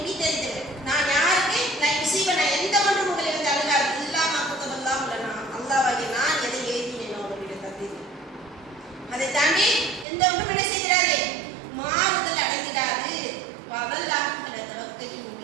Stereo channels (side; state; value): left; drops out; at 10.1 s